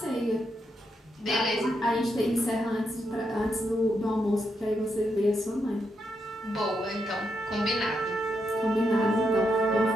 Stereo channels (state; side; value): normal; both; correlation 0.82